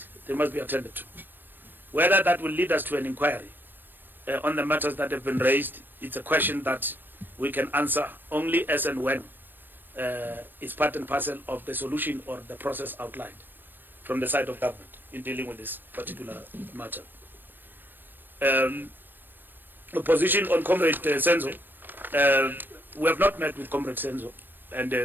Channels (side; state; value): left; late; 0.094 ms